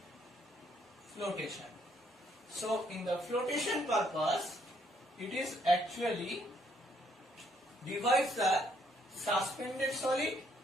flotation. So in the flotation purpose, it is actually divides the suspended solid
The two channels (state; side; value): normal; both; correlation 0.69